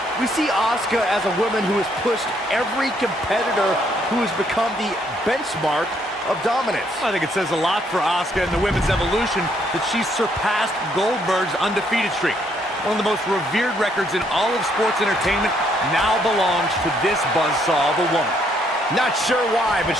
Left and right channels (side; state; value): both; normal; correlation 0.70